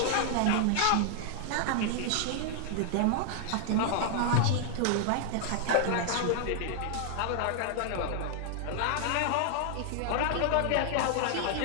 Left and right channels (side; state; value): both; different; correlation 0.00